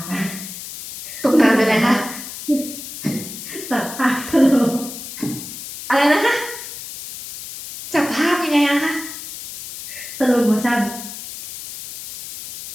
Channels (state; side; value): noise; left; hiss, 11 dB below the sound